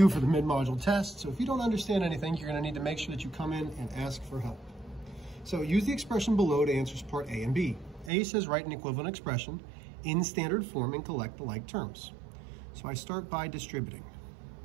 for the mid-module test. So if you don't understand anything, you're gonna need to make sure that you come in and ask for help. So use the expression below to answer part A and B. A says write an equivalent expression in standard form and collect the like terms. So I start by distributing.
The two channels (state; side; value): drops out; left; at 8.1 s